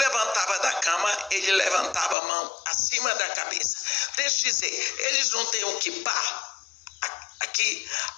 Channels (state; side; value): drops out; right; at 2.1 s